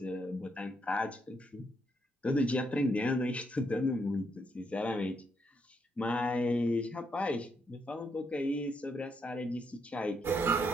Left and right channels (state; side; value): normal; both; correlation 0.77